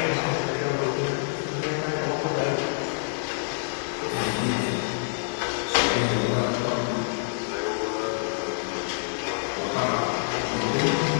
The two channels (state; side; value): silent; right; 58 dB below the other